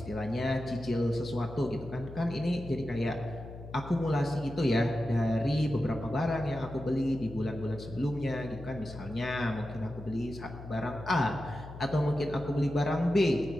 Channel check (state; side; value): noise; left; hum, 13 dB below the sound